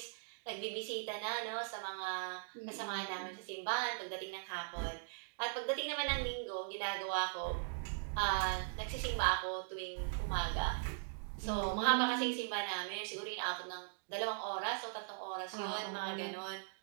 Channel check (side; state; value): left; silent; digital silence